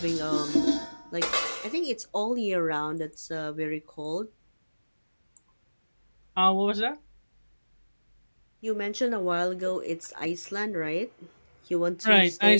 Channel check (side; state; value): both; inverted; correlation -1.00